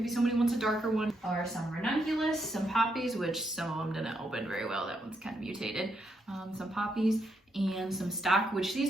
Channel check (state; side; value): normal; both; correlation 0.79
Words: somebody wants a darker one. Or some ranunculus, some poppies, which some of them didn't open very well. That one's kind of mutated. Some poppies and some stock, which